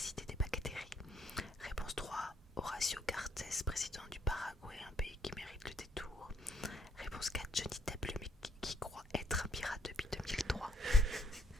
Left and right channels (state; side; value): normal; both; correlation 0.68